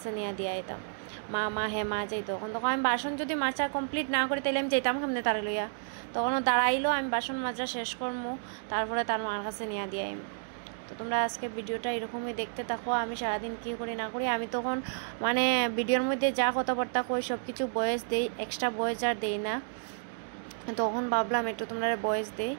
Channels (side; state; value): left; silent; digital silence